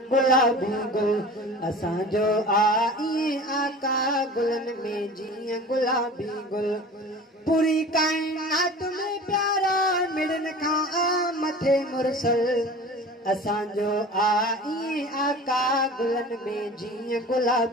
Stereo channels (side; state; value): both; normal; correlation 0.39